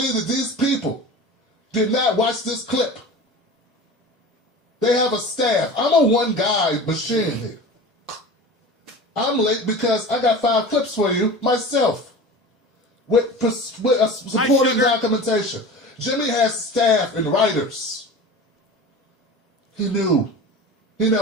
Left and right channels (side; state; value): both; normal; correlation 0.35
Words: that these people did not watch this clip, they have a staff. I'm a one-guy machine here. I'm late because I got 5 clips for you myself with supporting documentation. Jimmy has staff and writers. He knew. He